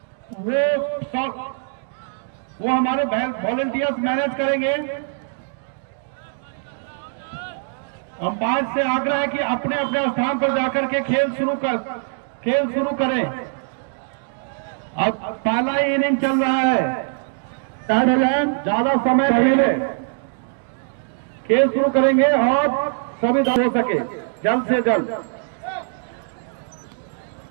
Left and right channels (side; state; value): left; silent; digital silence